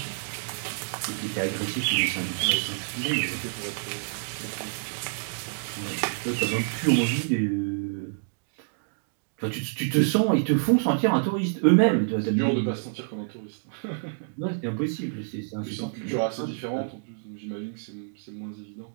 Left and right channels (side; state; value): left; silent; digital silence